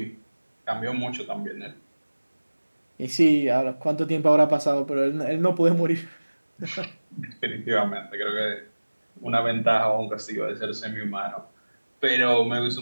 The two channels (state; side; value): inverted; both; correlation -1.00